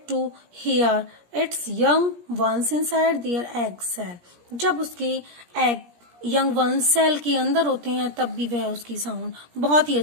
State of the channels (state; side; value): late; left; 17 ms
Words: to hear its young ones inside their egg cell. जब उसके एग यंग वंस सेल के अंदर होते हैं तब भी वह उसकी साउंड बहुत ही